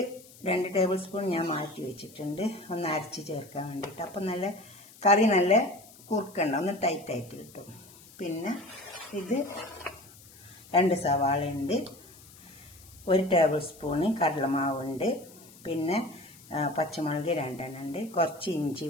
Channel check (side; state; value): left; noise; hiss, 22 dB below the sound